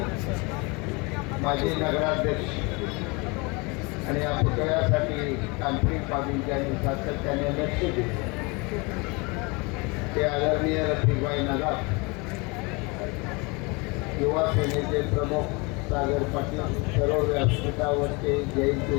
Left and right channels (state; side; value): quieter; right; 28.0 dB